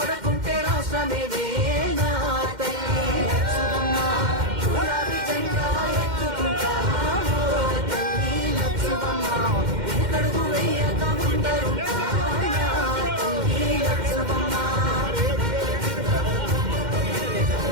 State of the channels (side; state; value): left; late; 2.1 ms